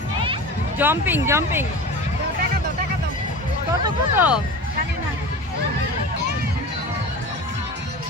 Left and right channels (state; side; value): normal; both; correlation 0.33